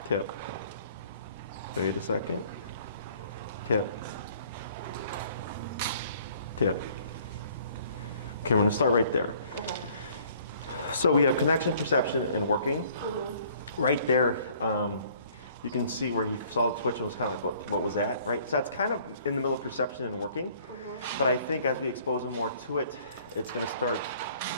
tap. Wait a second. Tap, tap. Okay, we're gonna start right there. Okay. So we have connection, perception, and working. Right there, you can see where he saw the twitch and was kind of like, what was that, right? So that's kind of in the middle of perception and working. But I think as we expose him more to it, it's gonna start,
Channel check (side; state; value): both; inverted; correlation -0.57